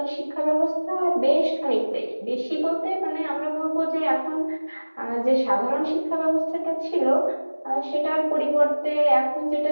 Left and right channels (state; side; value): inverted; both; correlation -1.00